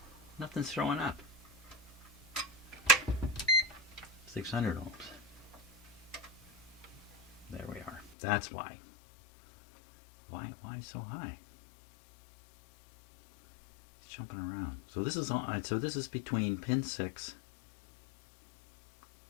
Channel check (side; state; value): right; drops out; at 8.2 s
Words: Nothing's showing up. 600 ohms. There we are. That's why. Why so high? It's jumping around. So this is on. So this is between pin 6